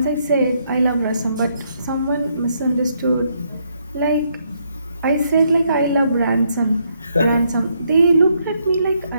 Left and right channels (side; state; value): both; inverted; correlation -0.74